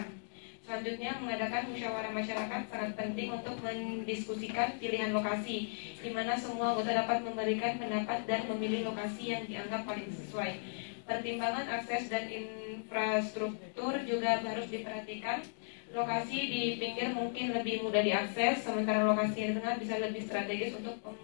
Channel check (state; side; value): silent; right; digital silence